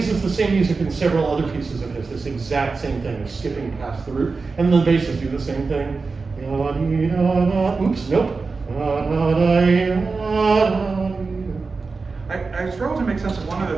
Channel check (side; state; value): left; quieter; 4.3 dB